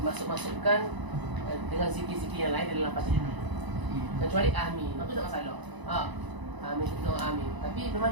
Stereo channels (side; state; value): left; late; 1.0 ms